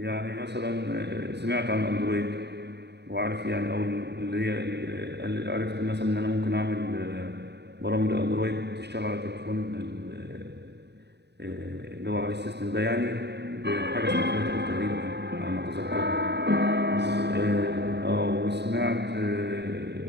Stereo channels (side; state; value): left; late; 0.49 ms